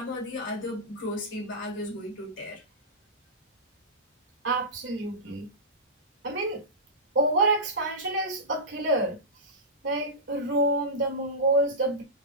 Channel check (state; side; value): normal; both; correlation -0.16